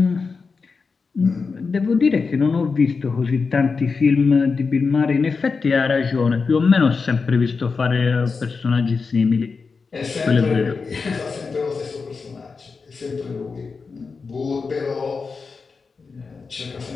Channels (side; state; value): right; quieter; 4.8 dB